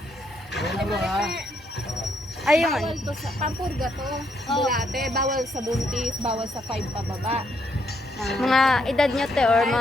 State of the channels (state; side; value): normal; both; correlation 0.74